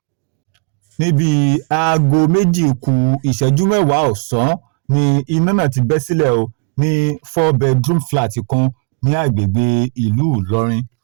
Níbi aago 2:10 ọ̀sán ni iná náà ti bẹ́ sílẹ̀ o ní 4-bedroom flat kan ní agbègbè ìlú Ìlọrin.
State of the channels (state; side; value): quieter; left; 35.9 dB